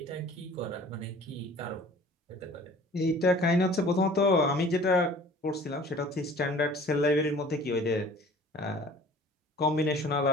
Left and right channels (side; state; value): both; normal; correlation 0.48